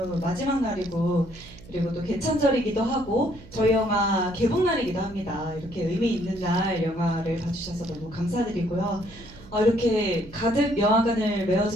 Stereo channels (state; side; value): noise; right; hum, 19 dB below the sound